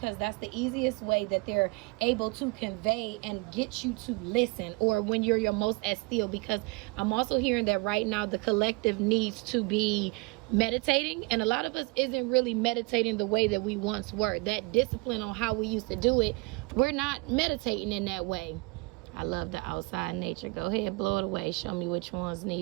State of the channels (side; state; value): left; quieter; 27.0 dB